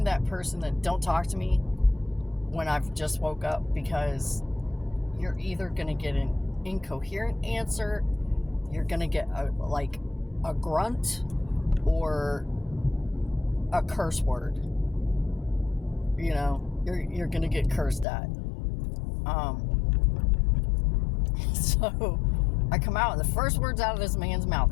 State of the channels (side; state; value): right; drops out; at 18.1 s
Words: that person that don't talk to me when I've just woke up, because you're either gonna get an incoherent answer, you're gonna get a grunt, or a curse word. You're gonna get cursed at. So I come out, and the first words out of this man's mouth,